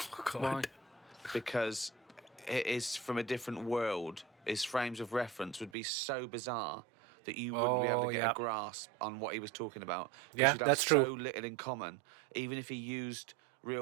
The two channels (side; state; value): left; drops out; at 5.7 s